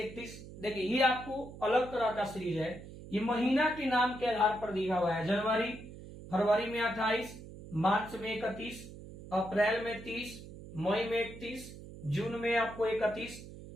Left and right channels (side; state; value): right; noise; hum, 14 dB below the sound